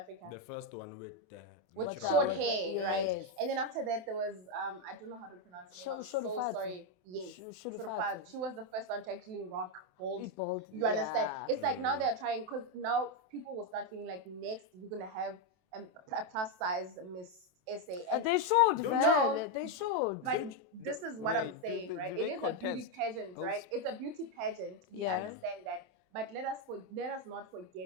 The first one with the with natural short hair. hair, right? And then after that, there was I don't know how to pronounce it. I'm so sorry. Yes, Shurufatu. She was the first one to actually rock bald. You understand? It's like now they're trying, because now people will start feeling like next we're gonna have a plus size Miss SA. They should, no, they should. But this is what I'm saying, right? It is a beauty pageant, right? It's a beauty pageant. We understand that. But let us not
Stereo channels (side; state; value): left; late; 27 ms